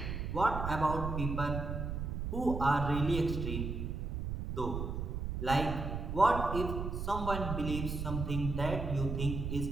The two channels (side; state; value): right; noise; rumble, 3 dB below the sound